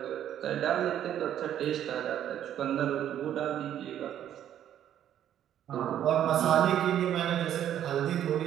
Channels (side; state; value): left; quieter; 10.7 dB